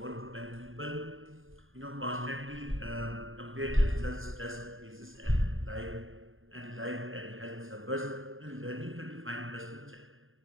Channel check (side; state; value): left; late; 0.59 ms